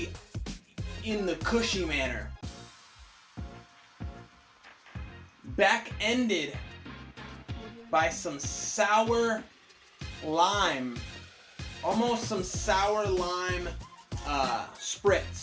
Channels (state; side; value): identical; both; correlation 1.00